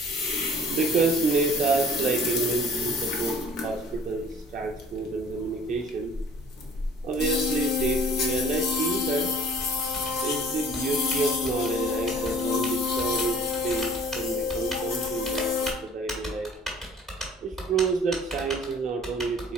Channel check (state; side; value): normal; both; correlation 0.52